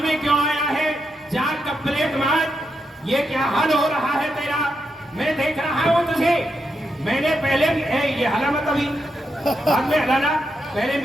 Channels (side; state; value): both; normal; correlation 0.84